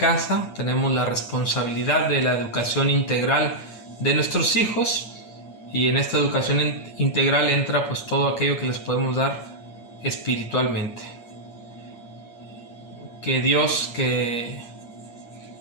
Tenemos la responsabilidad de la educación integral de nuestros hijos, y en esta educación integral entra pues todo aquello que les podemos dar espiritualmente. Que Dios, que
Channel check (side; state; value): right; late; 8.7 ms